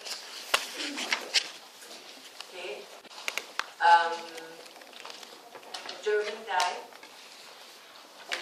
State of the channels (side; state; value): both; identical; correlation 1.00